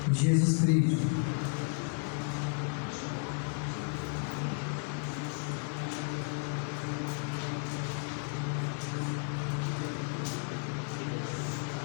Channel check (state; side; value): quieter; right; 39.4 dB